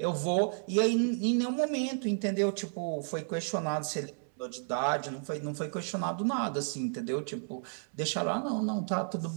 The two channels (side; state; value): left; silent; 56 dB below the other